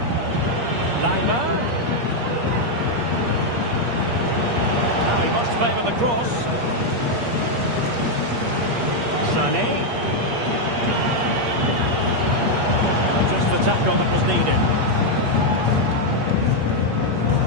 Lima. Now he must favour the cross. Sané. Just the tackle that was needed.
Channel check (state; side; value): late; left; 8.5 ms